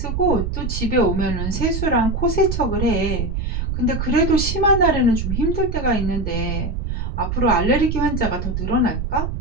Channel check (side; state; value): right; noise; rumble, 2 dB below the sound